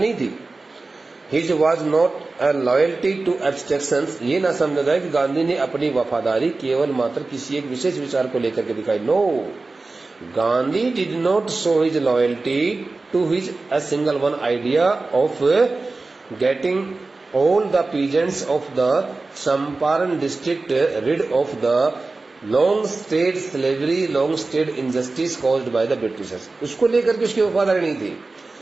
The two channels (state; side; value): quieter; left; 3.5 dB